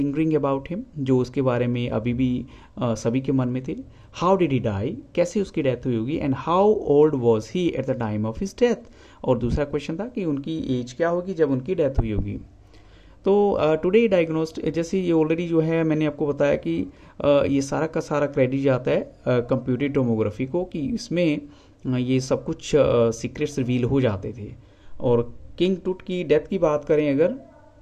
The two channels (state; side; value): identical; both; correlation 1.00